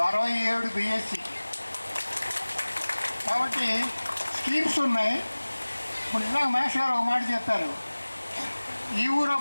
67 బిఎస్సి. కాబట్టి స్కీమ్స్ ఉన్నాయి. ఇప్పుడు ఇలా మేష్ గారు ఒక మాట చెప్పారు. ఈ ఊరు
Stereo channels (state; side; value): inverted; both; correlation -1.00